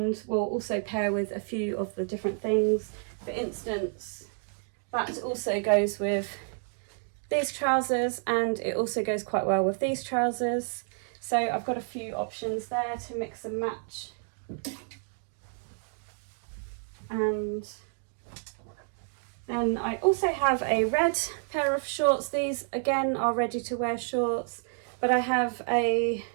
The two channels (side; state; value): left; silent; 58 dB below the other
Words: will also pair with a few of the different things. For instance, that also goes with these trousers, and it also goes quite well with these trousers. So I've got a few options there to mix and match. And then I also have a red pair of shorts. These again are ready to wear shorts, but I have a